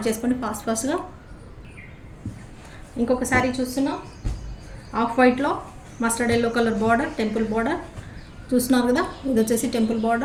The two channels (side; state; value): both; identical; correlation 1.00